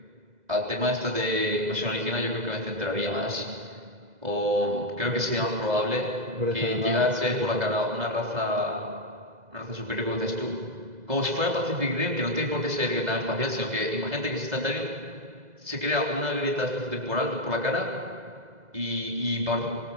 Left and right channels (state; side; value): late; left; 2.0 ms